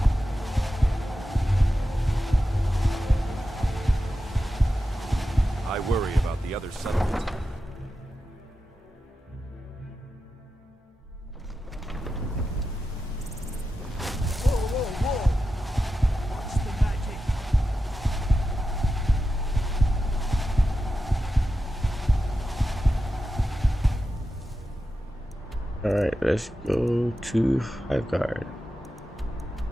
I worry about the other settlements. Whoa, whoa, whoa! What's the magic? Alright, let's go to Highguard.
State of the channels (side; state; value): both; normal; correlation 0.91